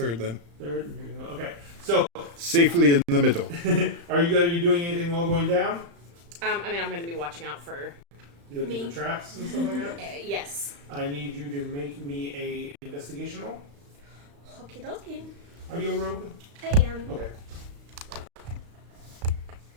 then. third, and you're going to go. Okay. So, Safely in the middle. are you going to be doing anything while going down? I mean, I'm going to be watching out for. You looking Me. for traps and stuff like that? Yes. I need you to make me a investigation roll. Okie dokie. Are you a rogue? I am. Okay.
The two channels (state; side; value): late; left; 35 ms